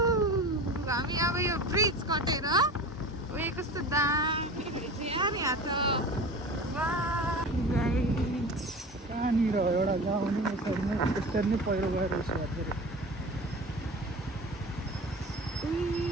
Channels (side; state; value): both; normal; correlation 0.34